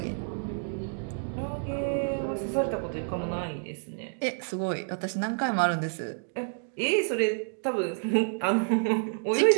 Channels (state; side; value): silent; left; 59 dB below the other